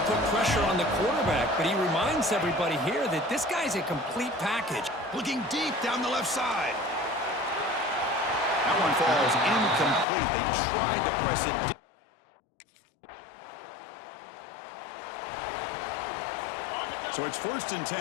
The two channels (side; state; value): right; drops out; at 10.1 s